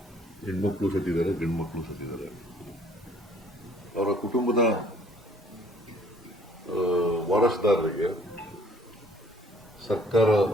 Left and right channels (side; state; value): both; normal; correlation 0.59